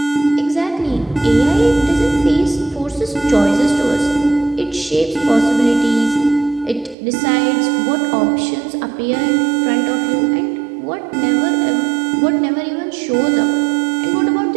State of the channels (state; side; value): drops out; left; at 7.0 s